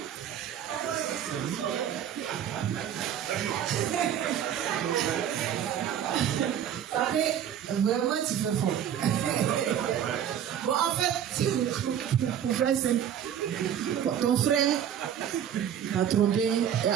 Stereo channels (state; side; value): quieter; left; 9.6 dB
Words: Vraiment, tu fais fort. Bon, en fait, pour faire simple, ton frère t'a trompé,